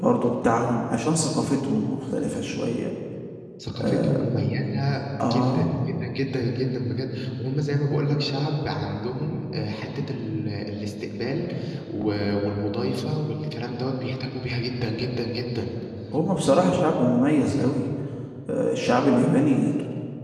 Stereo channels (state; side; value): identical; both; correlation 1.00